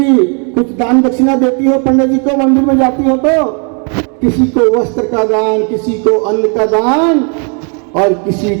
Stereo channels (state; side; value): quieter; left; 39.1 dB